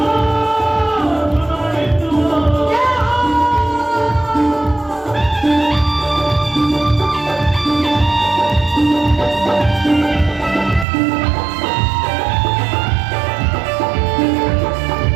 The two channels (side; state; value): left; drops out; at 10.9 s